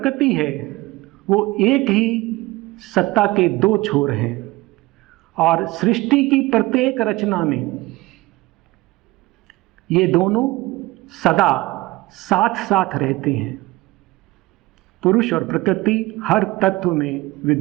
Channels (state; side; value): quieter; left; 20.5 dB